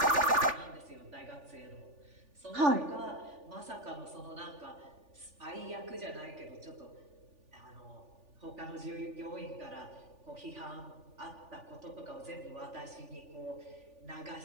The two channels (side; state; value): left; late; 3.4 ms